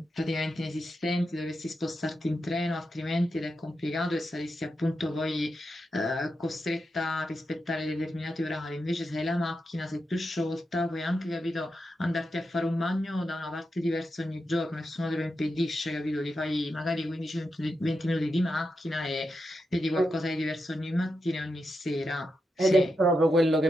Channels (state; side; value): normal; both; correlation 0.87